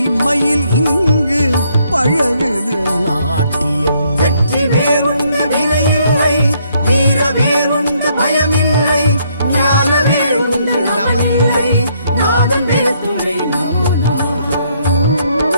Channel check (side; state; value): both; inverted; correlation -0.70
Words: மயில் இங்கு பழகுது நாட்டியம். வெற்றி வேறுண்டு வினையில்லை, வீர வேறுண்டு பயமில்லை, ஞான வேறுண்டு நமனில்லை, நாதன் வேதுணை நமோ நமக.